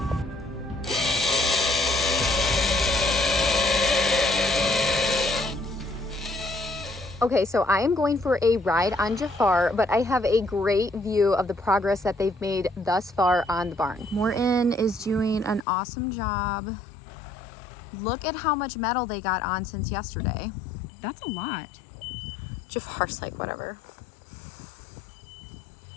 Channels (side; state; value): right; drops out; at 15.7 s